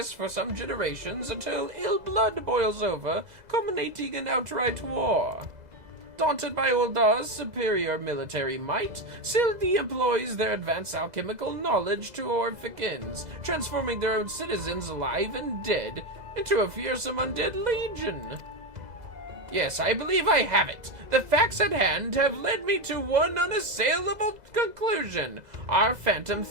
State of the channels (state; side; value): late; left; 2.0 ms